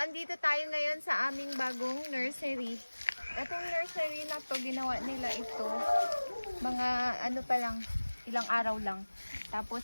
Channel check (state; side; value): inverted; both; correlation -1.00